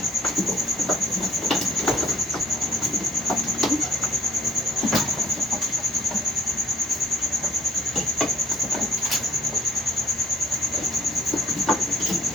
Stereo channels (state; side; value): normal; both; correlation 0.53